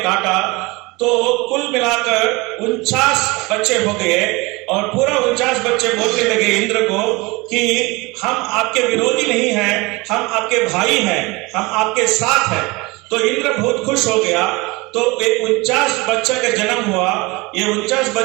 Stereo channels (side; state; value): left; quieter; 24.3 dB